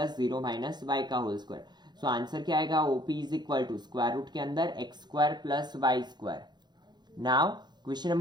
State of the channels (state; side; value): late; left; 0.21 ms